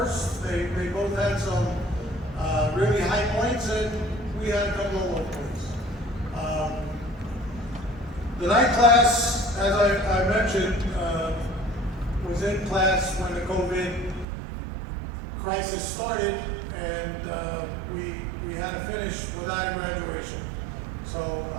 They both had some really high points, and we had a couple of low points. The night class, as I mentioned, was in class when the COVID crisis started, and we had to finish without graduation. So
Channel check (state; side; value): drops out; left; at 14.2 s